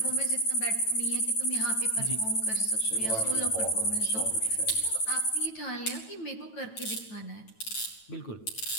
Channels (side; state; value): right; late; 9.1 ms